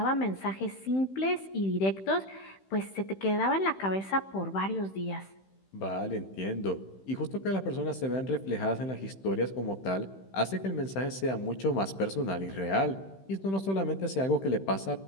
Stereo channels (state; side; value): late; right; 15 ms